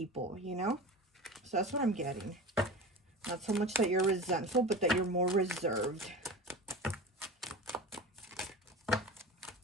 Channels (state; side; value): normal; both; correlation 0.32